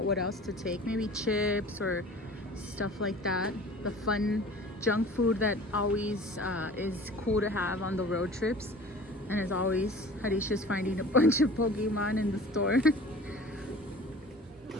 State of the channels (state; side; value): normal; both; correlation 0.43